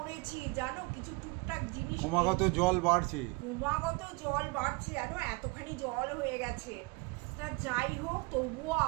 জানো। কিছু টুকটাক জিনিস ক্রমাগত জল বাড়ছে, জানো, এতখানি জল হয়ে গেছে। তা যাই হোক, তবুও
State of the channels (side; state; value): left; quieter; 27.1 dB